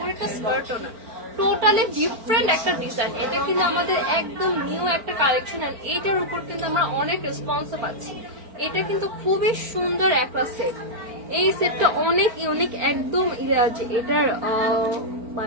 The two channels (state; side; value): late; left; 4.4 ms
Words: এটা স্কার্টও না, টোটালি ডিফারেন্ট একটা ডিজাইন। এটা কিন্তু আমাদের একদম নিউ একটা কালেকশন, আর এইটার উপর কিন্তু আমরা অনেক রেসপন্সও পাচ্ছি। এটা কিন্তু খুবই সুন্দর একটা সেট, এই সেটটা অনেক ইউনিক একদম। এটার